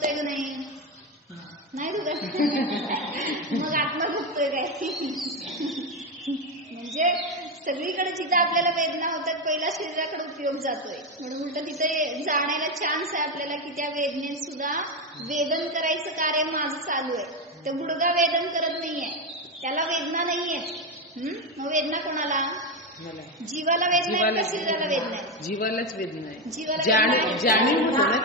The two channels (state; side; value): normal; both; correlation 0.10